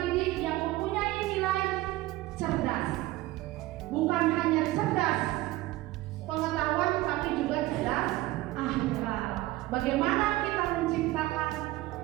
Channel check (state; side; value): quieter; left; 17.9 dB